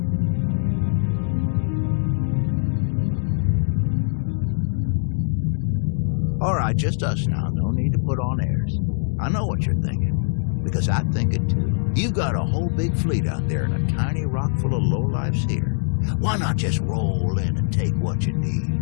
All right, just us now. No need to put on airs. I know what you're thinking, because I think it too. You've got a whole big fleet out there and a tiny rock full of lowlifes here. Why not just roll in and take what you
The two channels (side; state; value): right; silent; digital silence